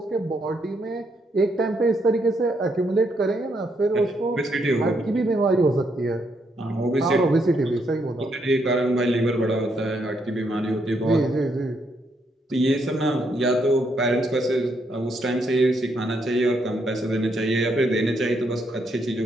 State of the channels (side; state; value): both; normal; correlation 0.76